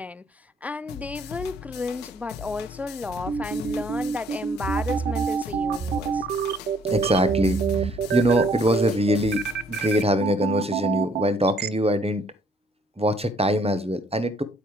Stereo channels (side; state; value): both; normal; correlation 0.63